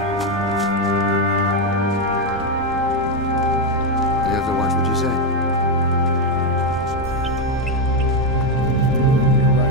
You have to watch what you say. You're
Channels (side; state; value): both; normal; correlation 0.06